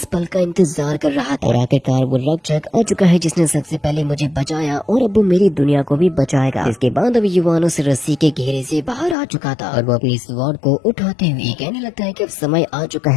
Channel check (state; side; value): drops out; right; at 9.2 s